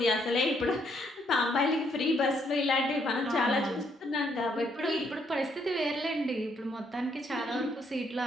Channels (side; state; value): both; normal; correlation 0.71